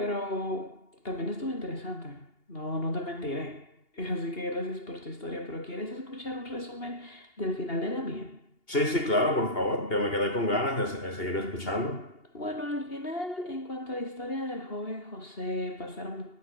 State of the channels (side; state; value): right; late; 2.8 ms